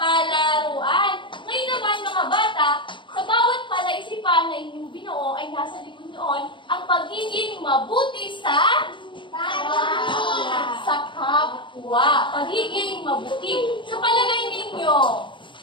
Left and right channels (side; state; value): right; late; 0.24 ms